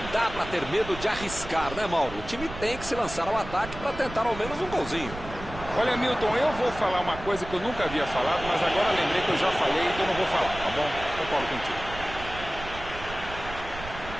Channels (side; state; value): right; noise; rumble, 12 dB below the sound